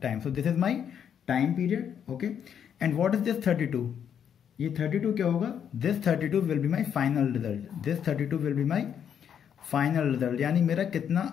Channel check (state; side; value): quieter; right; 8.4 dB